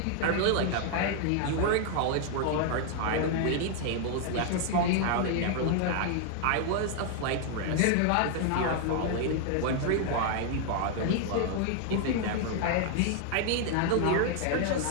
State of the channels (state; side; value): different; both; correlation 0.00